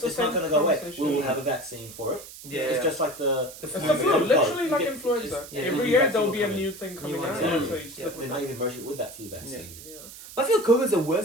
the It's same not going to go away. conversation. We will have a vaccine for it. Yeah. It's just like the The It's flu. the flu, Cold literally blood. like You get- influenza. yeah, Every new year vaccine there'll will be a come in. new thing coming one, out, yeah. so you just Yeah. live They with might that. even merge it with that flu vaccine. Yeah. I feel COVID's a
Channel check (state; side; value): noise; right; hiss, 15 dB below the sound